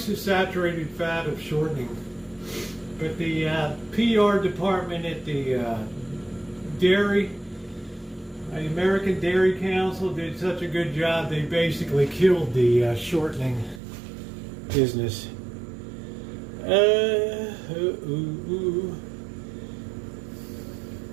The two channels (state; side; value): drops out; left; at 13.8 s